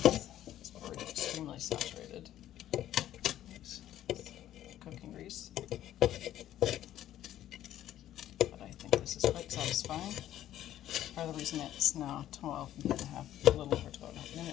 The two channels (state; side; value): quieter; right; 12.4 dB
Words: It's already extremely saturated. Cooking grease, but I think this is quite satisfying. Part of the reason it's now 12.5, a little over 12.5